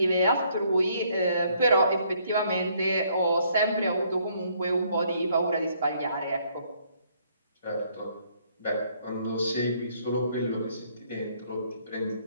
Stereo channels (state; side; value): inverted; both; correlation -0.67